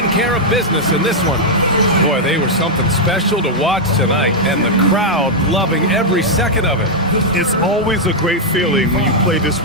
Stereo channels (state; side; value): normal; both; correlation -0.03